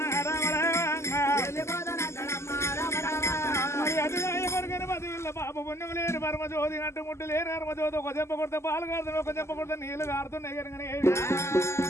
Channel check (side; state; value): right; late; 0.13 ms